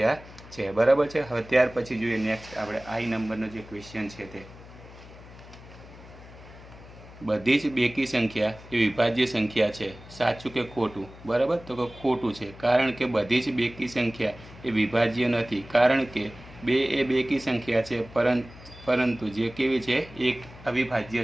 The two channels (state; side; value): noise; left; hum, 18 dB below the sound